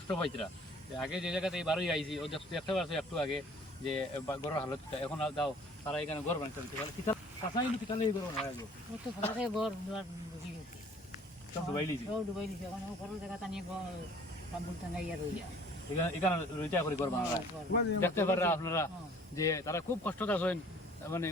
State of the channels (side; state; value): both; normal; correlation 0.53